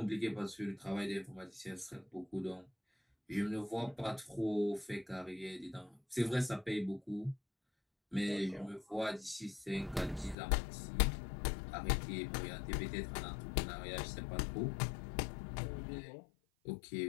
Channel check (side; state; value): right; drops out; at 10.4 s